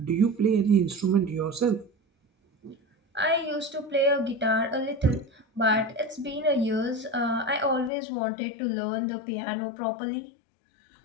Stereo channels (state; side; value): drops out; right; at 7.9 s